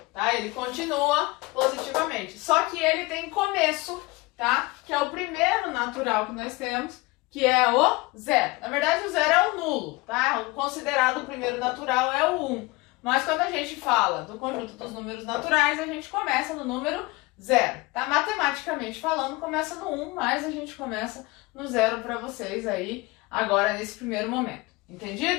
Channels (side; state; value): right; quieter; 23.0 dB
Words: tá? Ele continua positivamente, só que ele tem começo, tá? Que é o primeiro natural que nós temos, que é o zero. Na verdade, o zero é o nulo, tá? O considerado primeiro natural é o 1. Mas quando a gente fala do conjunto dos números naturais, a gente começa no número 0, tá? Matematicamente falando, começa no 1, mas a gente começa no 0 para vocês aí, agora nesse primeiro momento.